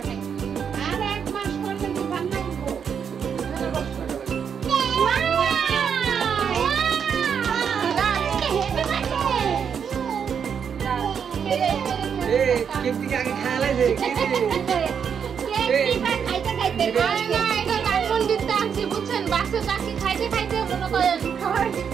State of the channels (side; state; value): left; quieter; 7.3 dB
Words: বুঝছেন বাচ্চা চাকরি খাইতে খাইতে